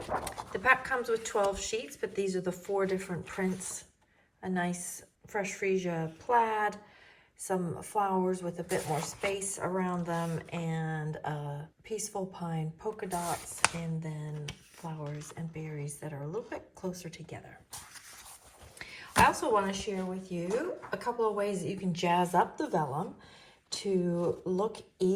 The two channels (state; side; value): identical; both; correlation 1.00